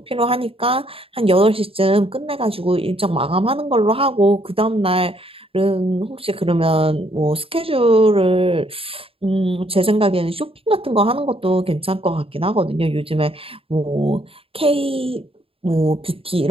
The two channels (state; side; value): late; left; 0.27 ms